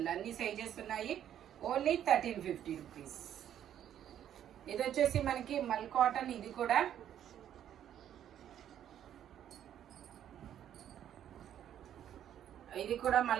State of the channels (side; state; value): left; quieter; 10.4 dB